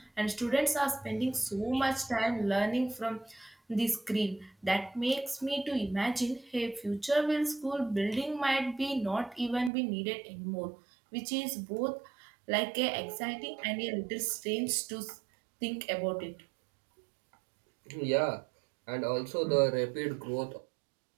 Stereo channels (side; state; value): left; drops out; at 9.7 s